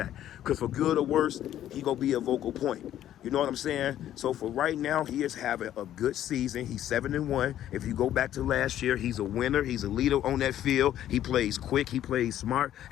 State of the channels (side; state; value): right; quieter; 11.7 dB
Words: because for good or worse, he gonna be a vocal point. You know what I'm saying? So for right now, he is having a good season. He's 7-1. If you go back to last year, he's a winner. He's a leader on that field. He plays quick. He plays smart.